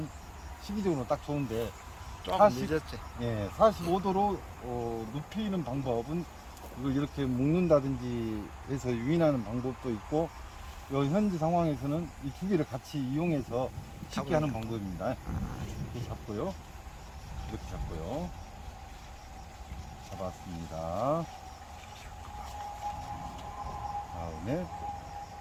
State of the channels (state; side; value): identical; both; correlation 1.00